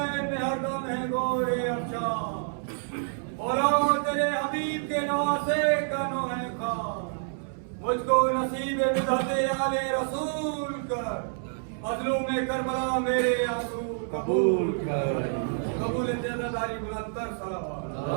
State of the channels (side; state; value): left; silent; digital silence